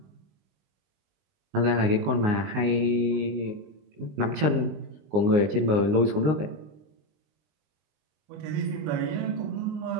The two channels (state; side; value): late; left; 19 ms